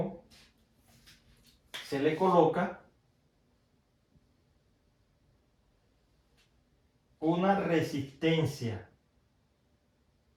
se le coloca una resistencia.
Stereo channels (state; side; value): identical; both; correlation 1.00